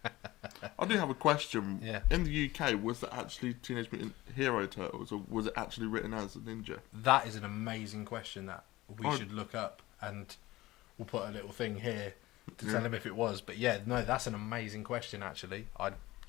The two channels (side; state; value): right; quieter; 18.3 dB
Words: I do have a question. Yeah. In the UK, was that actually Teenage Mutant Hero Turtles, or was it actually written as a ninja? That is an amazing question that we should look up, and we'll put a little thing here to tell him if it was. But yeah, no, that's an amazing question, actually. I